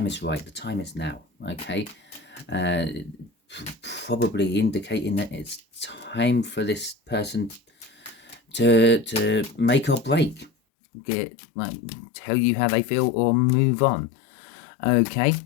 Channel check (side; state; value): right; drops out; at 10.5 s